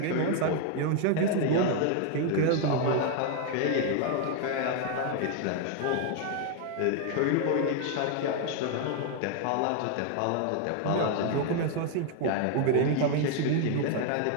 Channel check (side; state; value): both; different; correlation 0.00